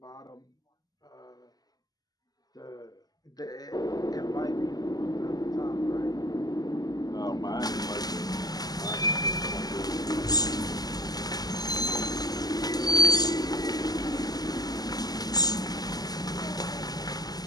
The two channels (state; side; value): late; right; 0.19 ms